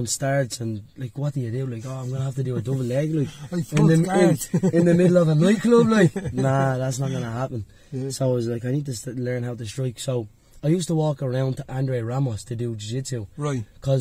starts and, like, what do you do? Like, I'm going to have to do a double leg, like, in the middle of a nightclub, like. Nah, that's not going to happen. So I was like, I need to learn how to strike. So I used to walk around to Andre Ramos to do jiu-jitsu. Right.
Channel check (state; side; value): identical; both; correlation 1.00